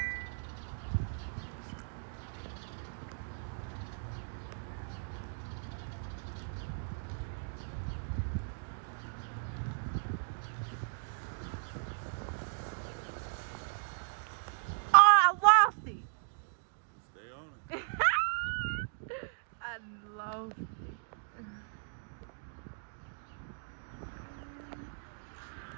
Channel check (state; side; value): silent; left; digital silence